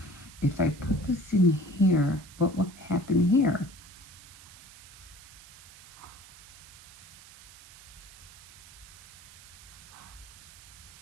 If I put this in here, what will happen here?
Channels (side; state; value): right; noise; hiss, 20 dB below the sound